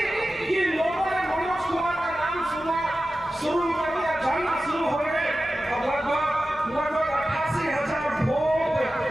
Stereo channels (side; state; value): both; normal; correlation 0.94